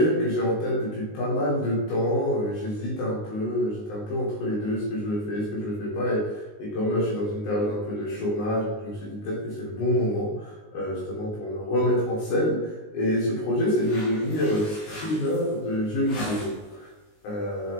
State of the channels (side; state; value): right; late; 19 ms